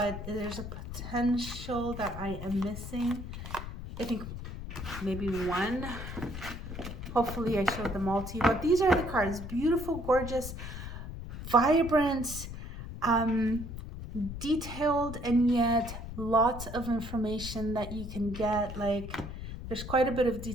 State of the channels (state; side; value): noise; left; rumble, 8 dB below the sound